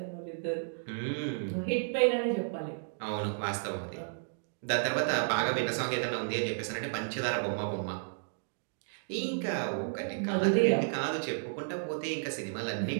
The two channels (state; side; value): silent; left; digital silence